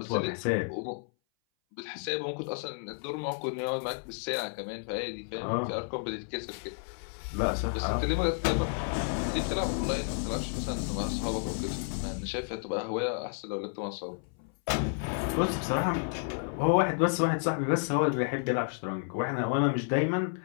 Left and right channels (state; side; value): silent; right; 57 dB below the other